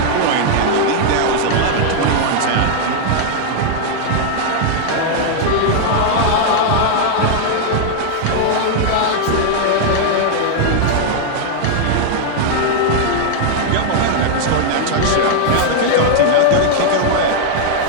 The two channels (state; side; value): different; both; correlation 0.00